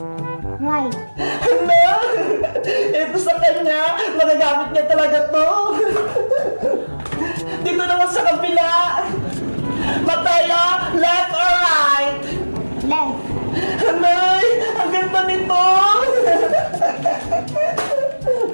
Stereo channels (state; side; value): inverted; both; correlation -1.00